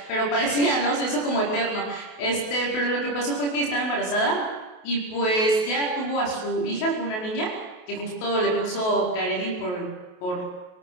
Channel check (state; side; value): late; right; 28 ms